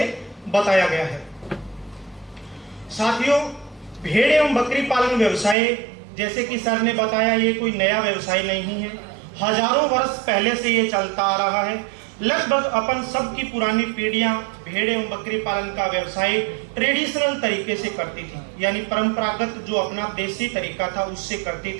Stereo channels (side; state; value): left; drops out; at 5.6 s